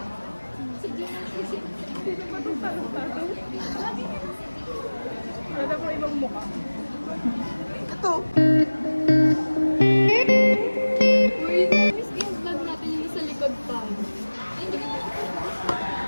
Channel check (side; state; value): both; inverted; correlation -1.00